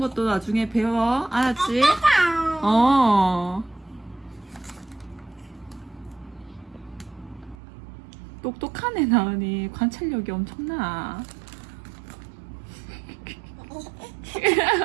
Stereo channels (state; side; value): drops out; left; at 7.6 s